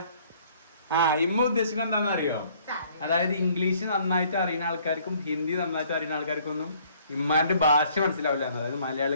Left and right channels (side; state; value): both; inverted; correlation -0.60